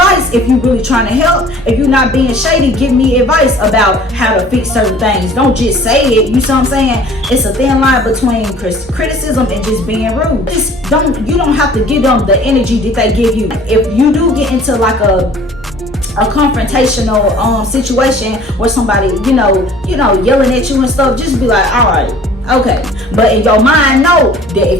if you're really trying to help. If you're not being shady, give me advice about how to fix certain things. Don't just say it. You see what I'm saying? It's a thin line between criticism and just being rude. You don't have to give them the energy that they give you. If you do get into like a confrontational situation where somebody yelling at you and stuff, just be like, all right, okay. But in your mind, know that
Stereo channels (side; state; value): both; normal; correlation 0.50